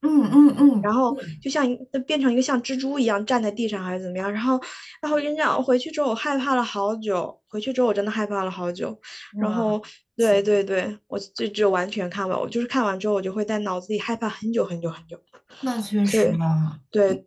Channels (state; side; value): identical; both; correlation 1.00